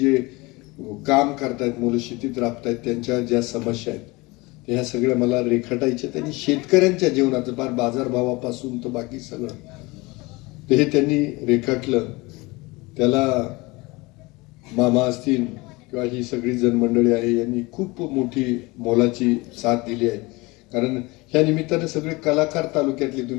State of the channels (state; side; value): quieter; right; 23.7 dB